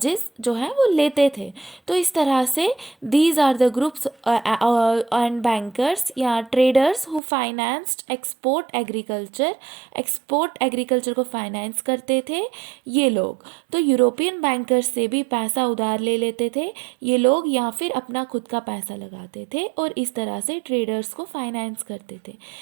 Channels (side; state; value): left; drops out; at 7.2 s